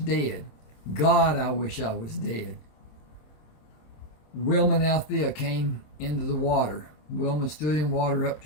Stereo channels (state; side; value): late; right; 27 ms